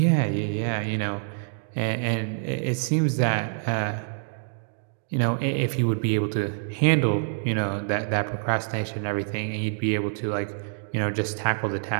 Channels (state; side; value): silent; left; digital silence